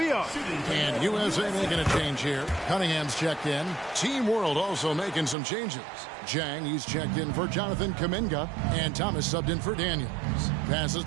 are. And USA making a change here. Cunningham's checked in. Team World also making some changes. Jang, he's checked in for Jonathan Kuminga. And Thomas subbed in for Daniels. Passes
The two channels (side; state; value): left; drops out; at 5.4 s